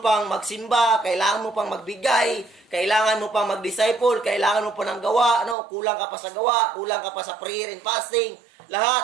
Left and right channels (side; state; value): left; drops out; at 5.6 s